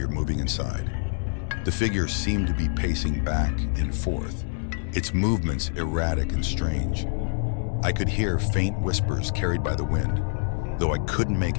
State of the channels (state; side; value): silent; right; digital silence